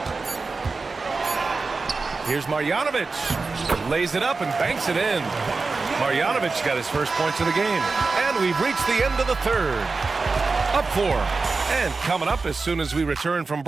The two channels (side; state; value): left; quieter; 4.1 dB